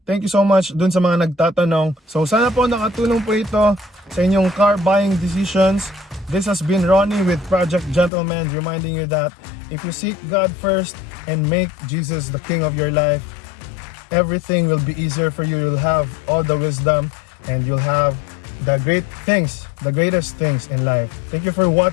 thank you so much dun sa mga nagtatanong. So sana po nakatulong po ito sa inyong car buying decisions. This has been Ronnie with Project Gentleman, reminding you that if you seek God first and make Jesus the King of your life, everything will be easier for you. You'll have all the wisdom and you'll have the great things, the greatest things in life. Thank you for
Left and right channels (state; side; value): drops out; right; at 8.1 s